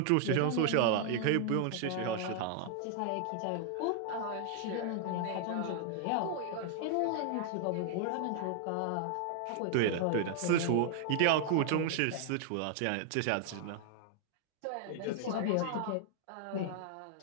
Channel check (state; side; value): different; both; correlation 0.00